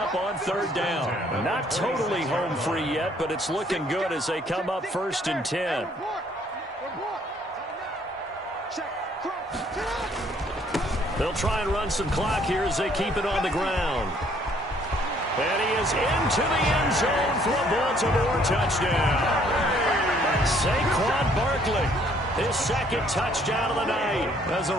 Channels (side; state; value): both; normal; correlation 0.63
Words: on third down. Not totally home free yet, but it's looking good as they come up 1st and 10. They'll try and run some clock here as they keep it on the ground. And he is into the end zone for a Baltimore touchdown. Saquon Barkley, his 2nd touchdown of the night as the